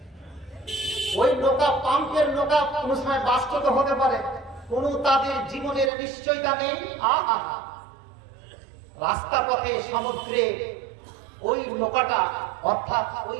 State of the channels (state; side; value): drops out; left; at 5.9 s